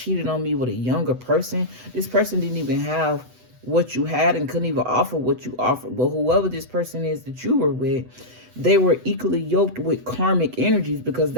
on me with a younger person. This person didn't even have what you had and couldn't even offer what you offered. But whoever this person is that you were with, they were equally yoked with karmic energies, because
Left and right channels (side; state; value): left; late; 8.0 ms